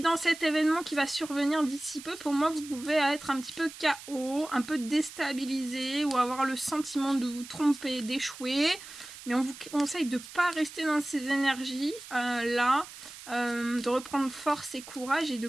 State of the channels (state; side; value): noise; right; hiss, 15 dB below the sound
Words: cet événement qui va survenir d'ici peu, pour moi, vous pouvez être un petit peu KO, un peu déstabilisé ou avoir le sentiment de vous tromper, d'échouer. Mais on vous conseille de ne pas rester dans ces énergies là, de reprendre force et courage et de